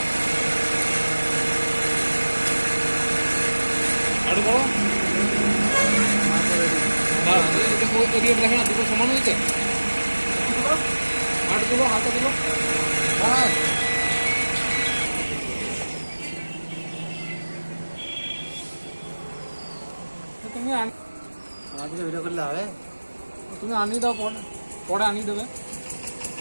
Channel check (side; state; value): both; inverted; correlation -1.00